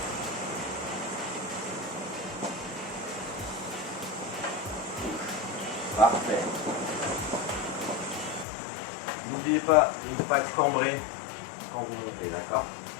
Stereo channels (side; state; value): right; drops out; at 8.5 s